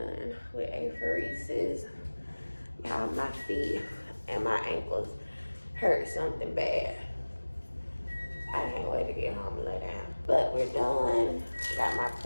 with apheresis. Y'all, my feet and my ankles hurt something bad. I can't wait to get home and lay down. But we're done. Got my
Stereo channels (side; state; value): both; inverted; correlation -1.00